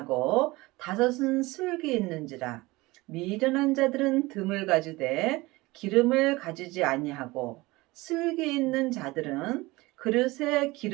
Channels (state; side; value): quieter; left; 21.4 dB